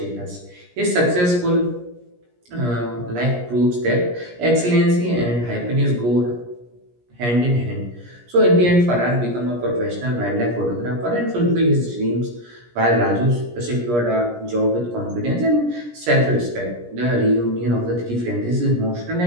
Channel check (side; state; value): left; late; 17 ms